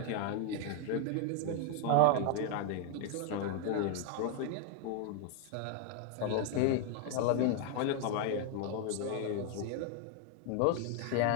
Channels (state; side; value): different; both; correlation 0.00